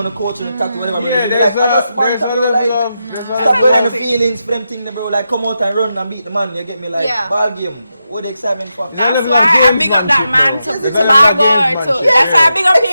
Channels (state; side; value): inverted; both; correlation -0.87